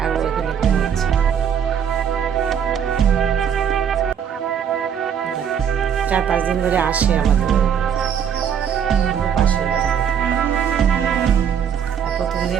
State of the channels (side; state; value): left; quieter; 8.1 dB